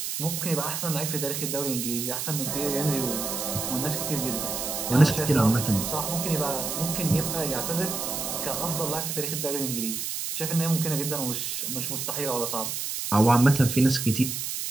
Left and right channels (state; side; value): noise; right; hiss, 3 dB below the sound